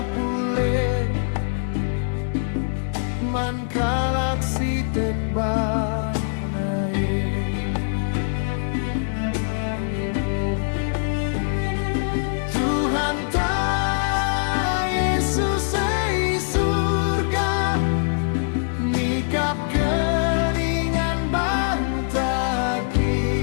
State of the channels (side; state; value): right; silent; digital silence